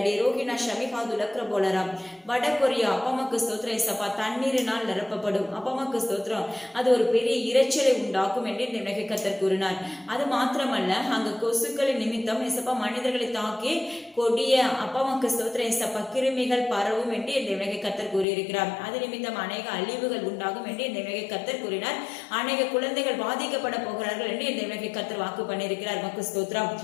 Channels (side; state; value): right; drops out; at 18.2 s